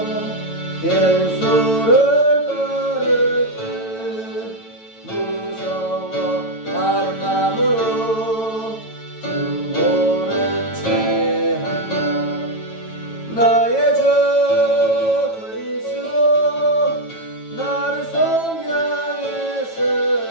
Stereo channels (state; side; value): late; right; 9.0 ms